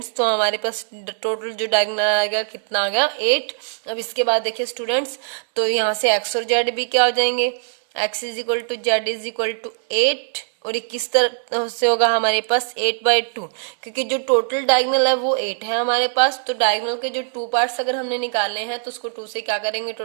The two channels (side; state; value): left; silent; digital silence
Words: तो हमारे पास टोटल जो डायगोनल आएगा कितना आ गया 8। अब इसके बाद देखिए स्टूडेंट्स, तो यहाँ से x और z भी क्या हो जाएंगे, x is equal to z is equal to 8, और ये किस तरह से होगा हमारे पास 8/2, क्योंकि जो टोटल डायगोनल है वो 8 है हमारे पास। तो डायगोनल के जो 2 पार्ट्स अगर हमने निकाले हैं तो उसको 2 से क्या करेंगे,